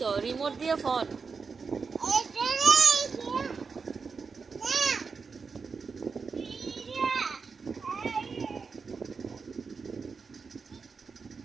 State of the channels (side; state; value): left; quieter; 5.1 dB